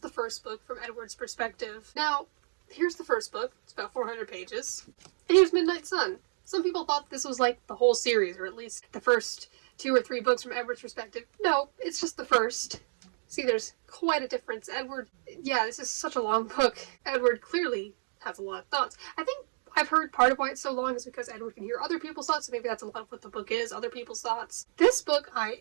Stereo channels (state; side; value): silent; left; digital silence